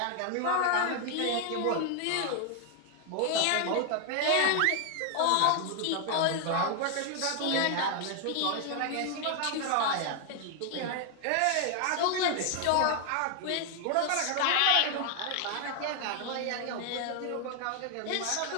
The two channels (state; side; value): different; both; correlation 0.00